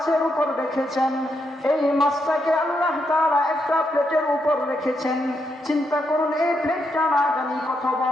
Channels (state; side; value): normal; both; correlation 0.80